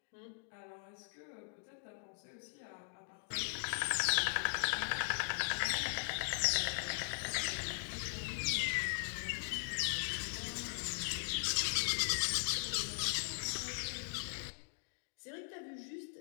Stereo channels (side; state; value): right; silent; digital silence